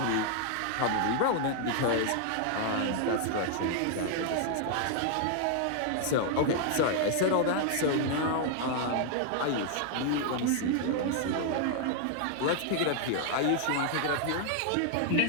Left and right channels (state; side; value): different; both; correlation 0.00